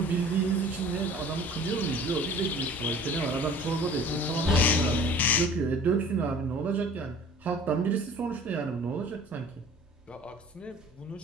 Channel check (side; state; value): both; normal; correlation 0.46